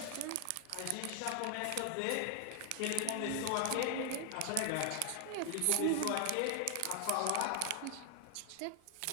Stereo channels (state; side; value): different; both; correlation 0.00